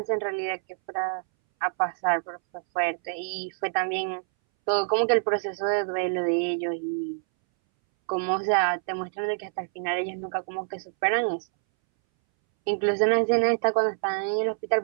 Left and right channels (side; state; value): left; silent; 61 dB below the other